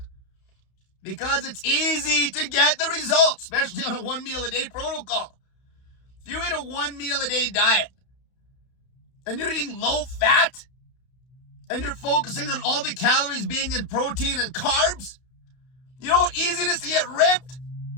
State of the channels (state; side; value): late; right; 31 ms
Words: Because it's easy to get the results, especially on a 1 meal a day protocol. If you eat a 1 meal a day diet and you're eating low-fat and you're focusing on all the calories being in protein and carbs, you know how easy it is to get ripped?